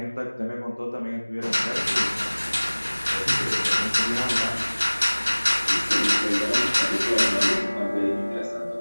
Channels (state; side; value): inverted; both; correlation -1.00